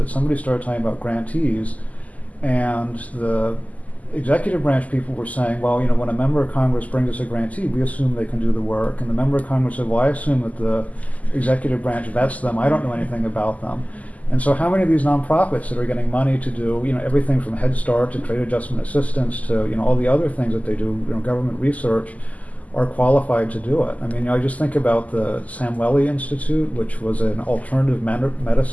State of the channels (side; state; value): right; late; 0.075 ms